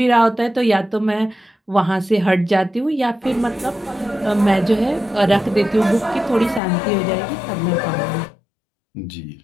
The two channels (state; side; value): drops out; right; at 6.6 s